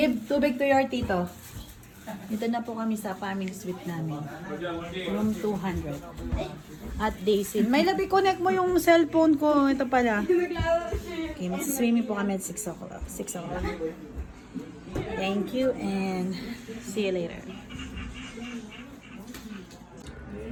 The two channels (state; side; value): identical; both; correlation 1.00